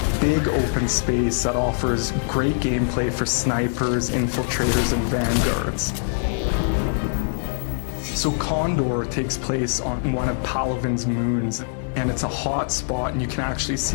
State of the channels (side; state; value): right; silent; digital silence